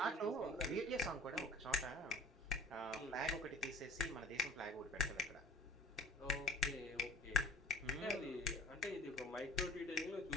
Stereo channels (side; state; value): both; normal; correlation 0.49